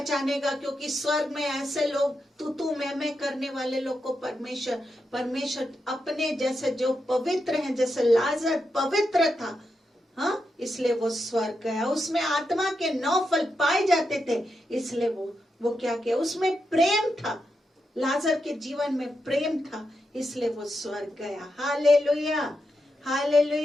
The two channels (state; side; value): normal; both; correlation 0.86